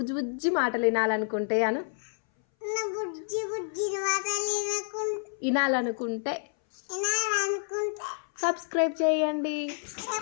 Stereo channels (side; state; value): right; silent; 59 dB below the other